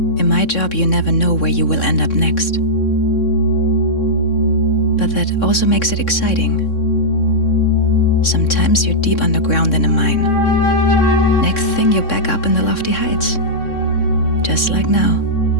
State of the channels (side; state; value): right; late; 3.6 ms